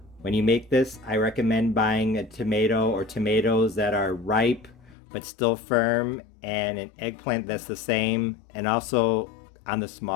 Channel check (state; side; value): drops out; right; at 5.0 s